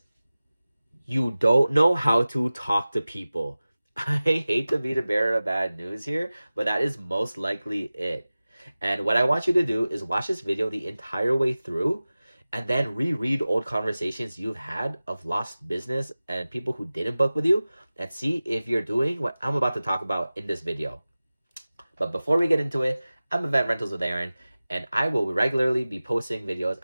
you don't know how to talk to people. I hate to be the bearer of bad news here, but that is most likely it. And what I want you to do is watch this video the entire way through and then reread old conversations you've had of lost business and people who didn't book with you and see if you're doing what I'm about to talk about in this video. But before we get into it, I'm Event Rentals with Aaron, and I will regularly be posting videos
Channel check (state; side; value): inverted; both; correlation -0.97